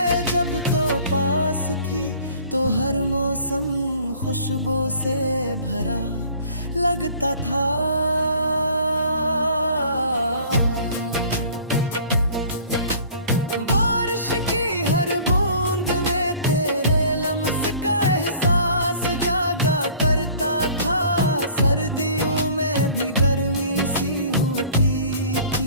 जब तो पास थी तो हर मौसम खुशबू से भरा लगता था। बारिश की हर बूंद में तेरे लम्स का एहसास जागा करता था। सर्दियों में भी गर्मी सी होती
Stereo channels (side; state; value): both; inverted; correlation -0.50